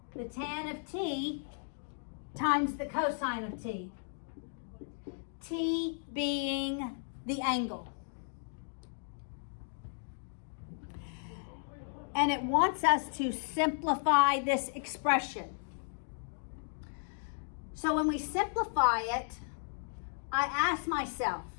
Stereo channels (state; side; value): silent; right; digital silence